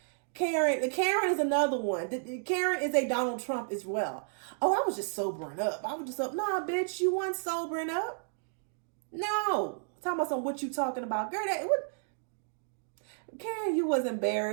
Karen is another one. Karen is a Donald Trump as well. Oh, I was just sobering up. I was just up. Nah, bitch, you weren't sobering up. No, talking about what you talking about, girl. Karen, you was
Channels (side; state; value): left; silent; digital silence